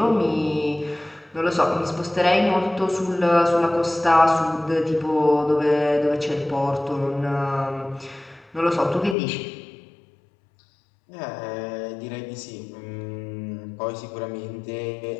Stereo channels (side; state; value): right; drops out; at 9.2 s